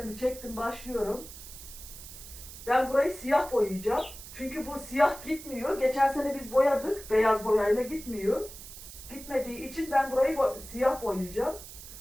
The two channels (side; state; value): right; noise; hiss, 14 dB below the sound